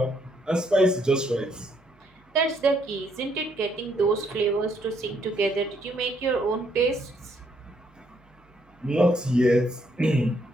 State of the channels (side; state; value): both; normal; correlation 0.71